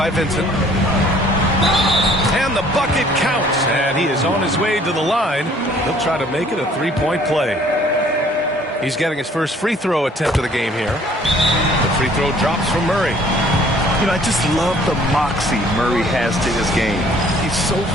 Vincent. And the bucket counts. And he is on his way to the line. He'll try to make it a 3-point play. He's getting his first free throw attempt of the game here. The free throw drops from Murray. You know, I just love the moxie Murray has to his game. He's so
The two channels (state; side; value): normal; both; correlation 0.57